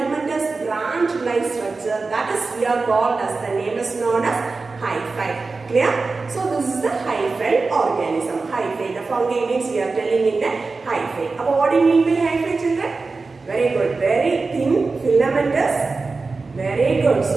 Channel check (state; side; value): quieter; left; 4.0 dB